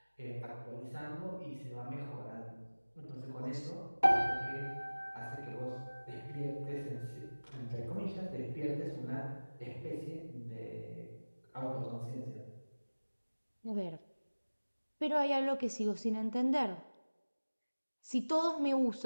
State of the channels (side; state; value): both; inverted; correlation -1.00